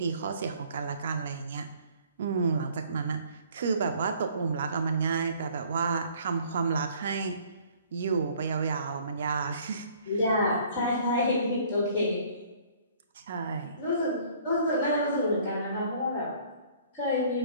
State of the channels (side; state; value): both; inverted; correlation -0.56